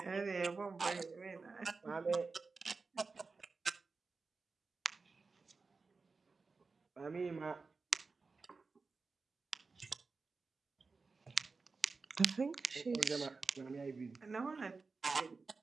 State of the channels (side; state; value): left; quieter; 4.3 dB